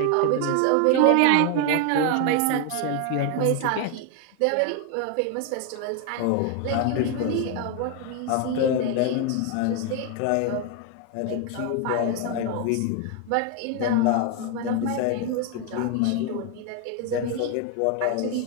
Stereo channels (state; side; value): different; both; correlation 0.01